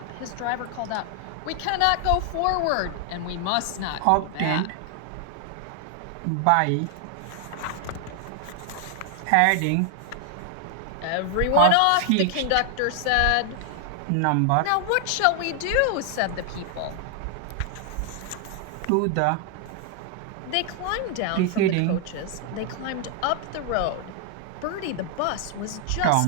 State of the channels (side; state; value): both; different; correlation 0.00